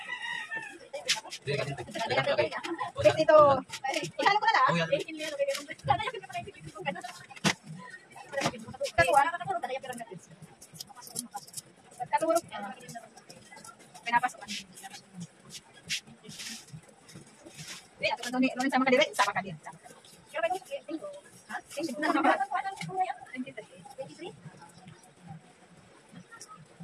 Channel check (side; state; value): both; identical; correlation 1.00